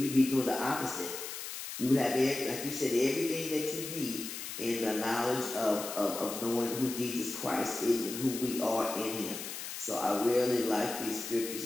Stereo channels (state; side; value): noise; left; hiss, 8 dB below the sound